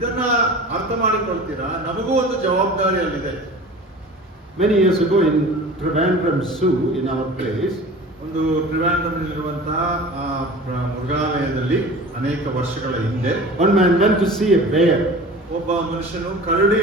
ಅರ್ಥ ಮಾಡಿಕೊಳ್ತೀರಾ? ನಮಗೂ ಒಂದು ಜವಾಬ್ದಾರಿ ಅಲ್ಲಿದೆ. Many years ago in Trivandrum Zoo, in our place, ಒಂದು ಟ್ರಿವಾಂಡ್ರಮ್ನಲ್ಲಿರುವಂತಹ ಮೃಗಾಲಯದಲ್ಲಿ ಅನೇಕ ವರ್ಷಗಳ ಹಿಂದೆ one man went to see a bear. ಒಬ್ಬ ಮನುಷ್ಯನು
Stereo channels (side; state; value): both; normal; correlation 0.39